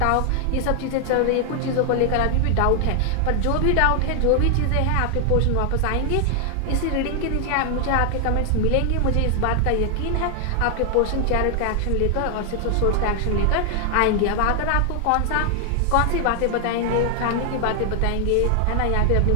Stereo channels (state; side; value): different; both; correlation 0.00